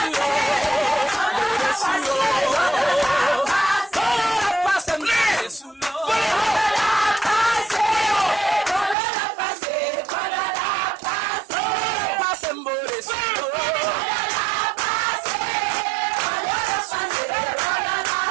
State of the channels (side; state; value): left; drops out; at 9.0 s